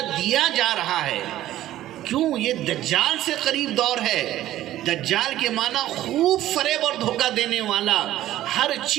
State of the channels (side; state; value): left; quieter; 13.9 dB